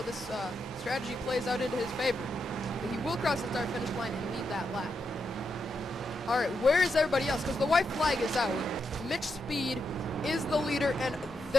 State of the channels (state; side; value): normal; both; correlation 0.84